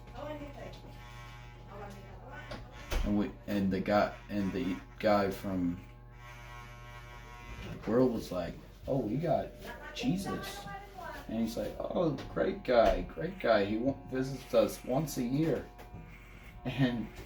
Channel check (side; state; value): both; identical; correlation 1.00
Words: and the guy from the world was like, oh, we got Jesus. And he's like, oh, great guy. He visits us once a year. And